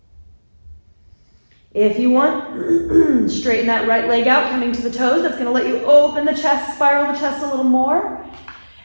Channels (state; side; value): inverted; both; correlation -1.00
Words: If you want, straighten that right leg out, coming to the toes. That's going to let you open the chest, spiral the chest a little more.